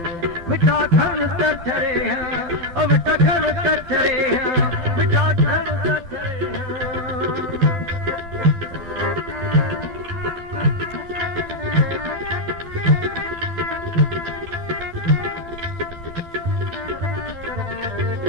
मिठा खन तठरे ओ मिठा खन तठरे मिठा खन तठरे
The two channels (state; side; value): late; left; 12 ms